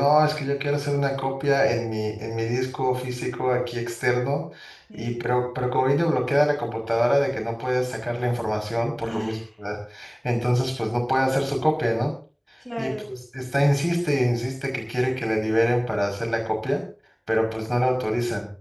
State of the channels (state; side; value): identical; both; correlation 1.00